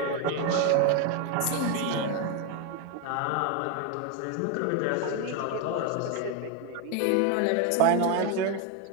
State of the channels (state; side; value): different; both; correlation 0.02